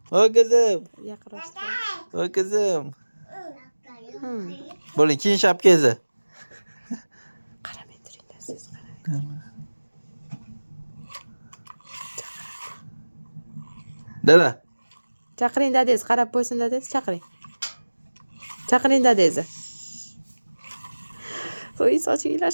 Voy qizim. Yaqinlashtir. Voy qizim. Bo'ling, keyin shapkangizni. Qaramay turinglar siz qarang. Dada. Chaqiring dadangiz, qarab qo'ysin dadangiz, chaqiring. Chaqiring dadangizni. Voy, soching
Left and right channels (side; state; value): both; inverted; correlation -1.00